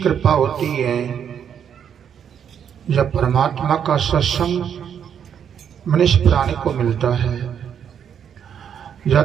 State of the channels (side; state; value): left; quieter; 8.3 dB